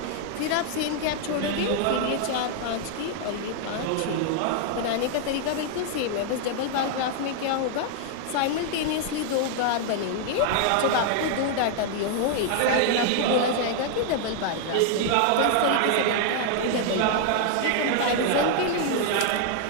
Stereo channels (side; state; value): both; different; correlation 0.00